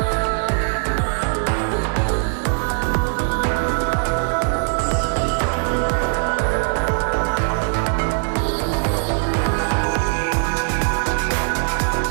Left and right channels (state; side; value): silent; left; digital silence